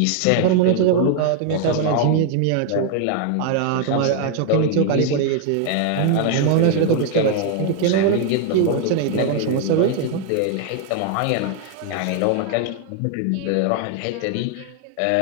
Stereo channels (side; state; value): both; different; correlation 0.00